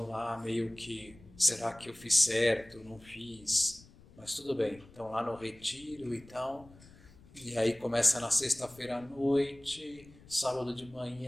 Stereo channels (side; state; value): left; noise; rumble, 23 dB below the sound